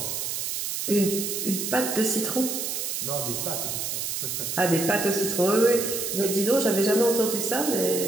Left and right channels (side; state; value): right; noise; hiss, 3 dB below the sound